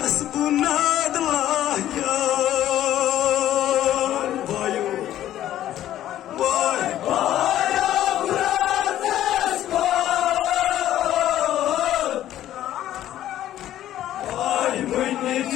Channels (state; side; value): quieter; right; 12.5 dB